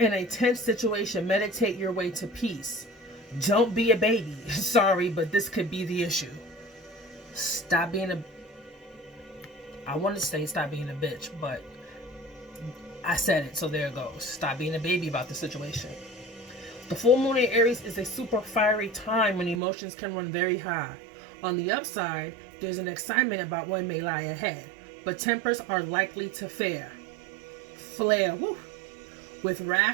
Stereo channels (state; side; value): drops out; left; at 19.6 s